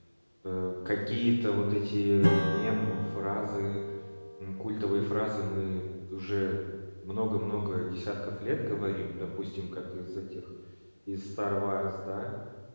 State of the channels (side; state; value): both; inverted; correlation -1.00